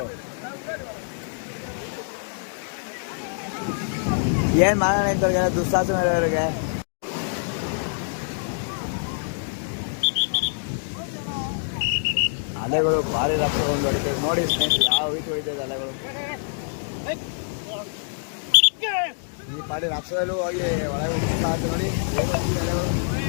ಏನ್ ಮಾಡೋಣ ಇಂಥವ್ರಿಗೆ ದುಸ್ಸಾಹಸ ನಡೆಯೋರಿಗೆ. ಅಲೆಗಳು ಭಾರಿ ರಕ್ತ ಒಂದು ಹೊಡಿತದೆ ನೋಡಿ ಸ್ನೇಹಿತರೆ, ಯಾವ ರೀತಿ ಹೊಡಿತದೆ ಅಲೆಗಳು. ಈ ಪಾಡಿ ರಕ್ತದಲ್ಲೂ ಹೋಗಿ ಒಳಗೆ ಸಾಹಸ ನೋಡಿ ಅಲೆಗಳು.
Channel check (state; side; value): silent; right; digital silence